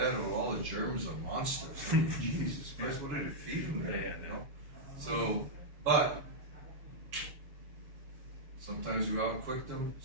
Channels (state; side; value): late; left; 6.5 ms